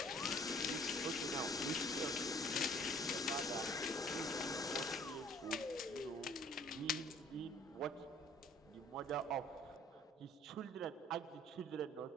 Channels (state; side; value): normal; both; correlation 0.55